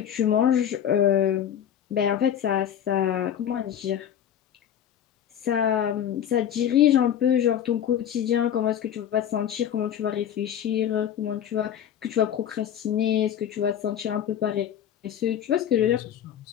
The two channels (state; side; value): quieter; right; 9.7 dB